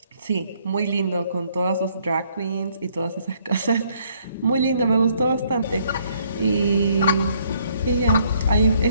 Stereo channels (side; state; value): both; inverted; correlation -0.67